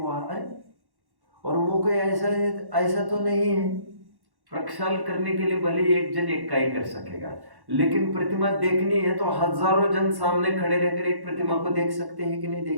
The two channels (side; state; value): left; late; 1.1 ms